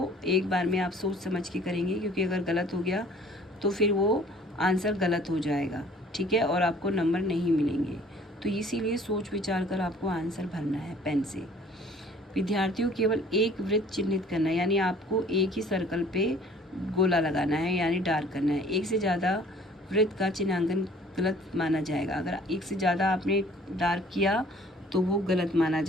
एक बार में आप सोच समझ के करेंगे, क्योंकि अगर गलत हो गया तो फिर वो आंसर गलत हो जाएगा, ठीक है, और आपको नंबर नहीं मिलेंगे। तो इसीलिए सोच विचार कर आपको आंसर भरना है पेन से। विद्यार्थियों केवल एक वृत्त चिन्हित करना है, यानी आपको एक ही सर्कल पे गोला लगाना है, यानी डार्क करना है। एक से ज़्यादा वृत्त का चिन्हांकन गलत माना जाएगा। अगर एक से ज़्यादा आपने डार्क किया तो वो गलत माना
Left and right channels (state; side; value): normal; both; correlation 0.53